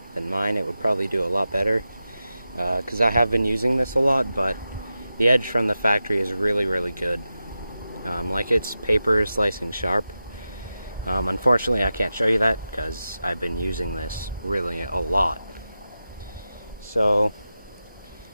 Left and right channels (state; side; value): inverted; both; correlation -0.92